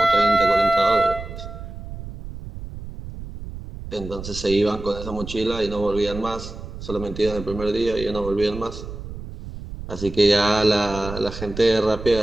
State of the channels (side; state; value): right; noise; rumble, 11 dB below the sound